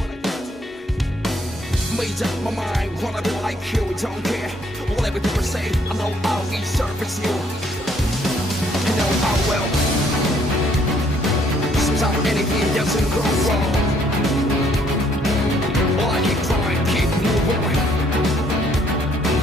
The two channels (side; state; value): both; normal; correlation 0.66